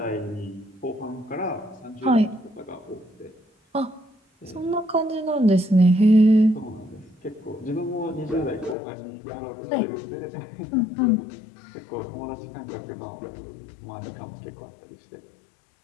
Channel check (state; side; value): drops out; right; at 8.8 s